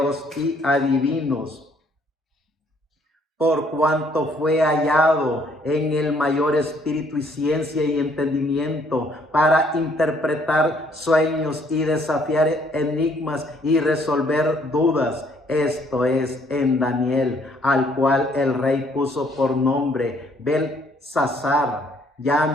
y adivinos. Por cuanto fue hallado en el mayor espíritu y ciencia y entendimiento para interpretar sueños y desafiar enigmas y resolver dudas. Esto es en Daniel, al cual el rey puso por nombre Belsasar.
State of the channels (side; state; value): both; normal; correlation 0.65